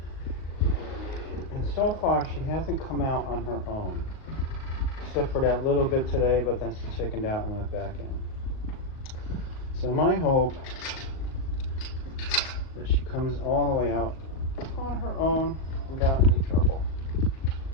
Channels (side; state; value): right; late; 38 ms